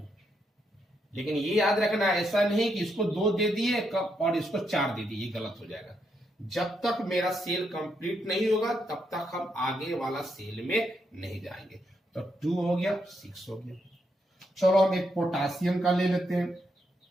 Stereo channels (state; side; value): normal; both; correlation 0.79